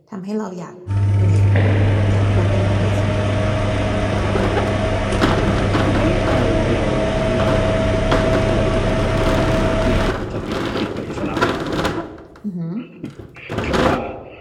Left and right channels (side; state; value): both; identical; correlation 1.00